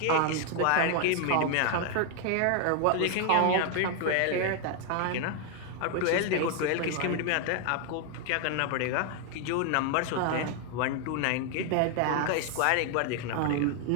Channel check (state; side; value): different; both; correlation 0.00